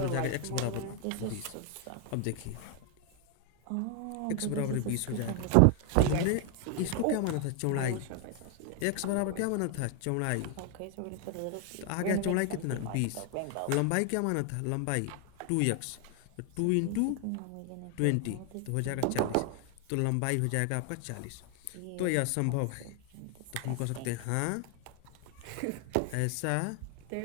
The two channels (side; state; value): both; different; correlation 0.00